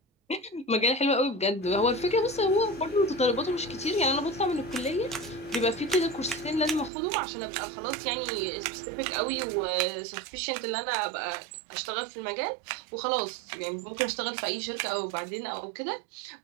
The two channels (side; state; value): left; drops out; at 6.9 s